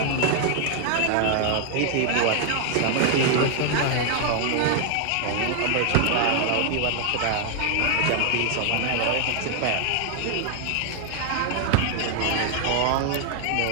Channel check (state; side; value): different; both; correlation 0.00